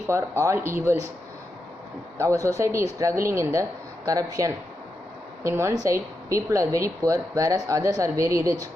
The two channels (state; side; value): normal; both; correlation 0.86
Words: all evils. Our society is struggling in the corruption. In one side, people are very poor, whereas others are very rich.